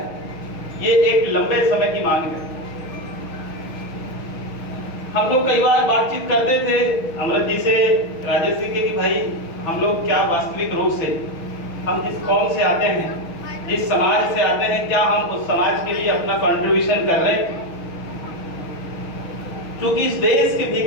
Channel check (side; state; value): right; late; 6.4 ms